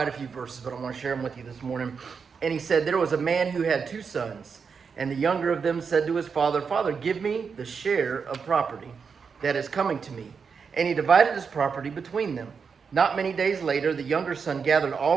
a few verses, but I want to share them with you this morning. And he said, there was a man who had 2 sons, and the younger of them said to his father, Father, give me the share of property that is coming to me. And he divided his property between them. Not many days later, the younger son gathered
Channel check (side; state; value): left; quieter; 5.8 dB